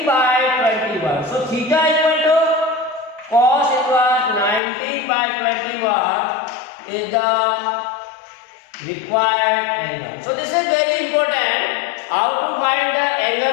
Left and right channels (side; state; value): right; drops out; at 4.6 s